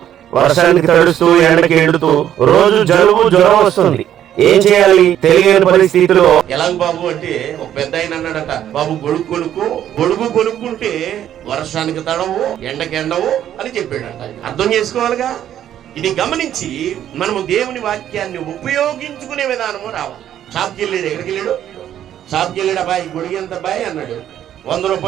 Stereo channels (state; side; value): quieter; left; 10.9 dB